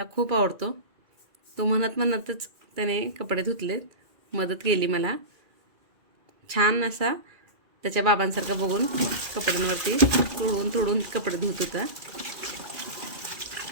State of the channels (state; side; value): late; left; 2.4 ms